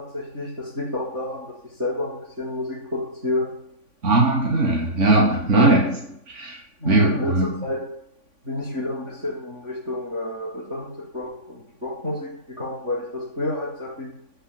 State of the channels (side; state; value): left; late; 3.5 ms